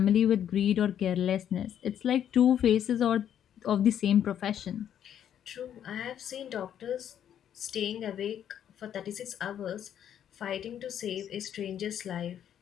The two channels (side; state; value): right; quieter; 9.8 dB